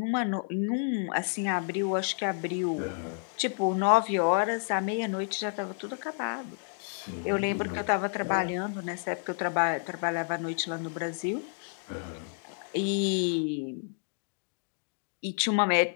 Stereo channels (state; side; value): silent; right; 58 dB below the other